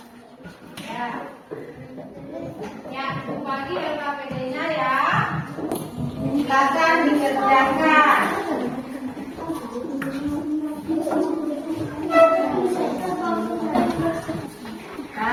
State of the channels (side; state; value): both; identical; correlation 1.00